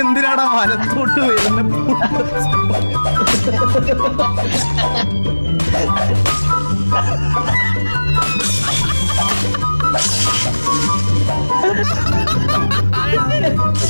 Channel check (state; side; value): inverted; both; correlation -1.00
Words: എന്തിനാടാ വലത്തോട്ട് വരുന്നത്?